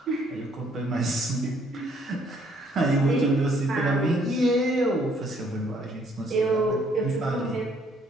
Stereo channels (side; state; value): both; normal; correlation 0.65